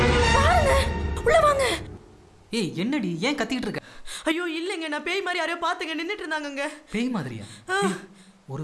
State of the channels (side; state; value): both; identical; correlation 1.00